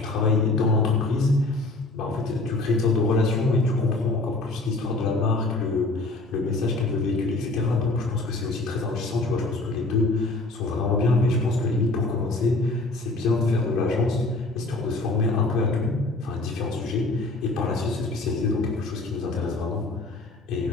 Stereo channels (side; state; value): right; quieter; 3.0 dB